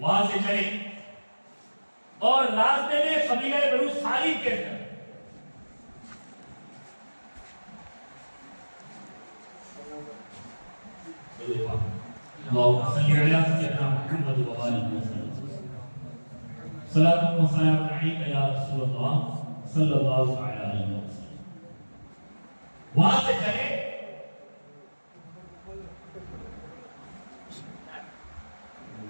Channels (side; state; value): both; inverted; correlation -1.00